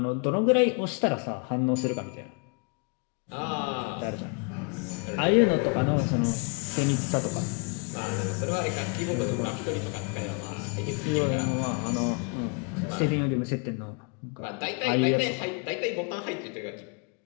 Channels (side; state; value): right; quieter; 35.6 dB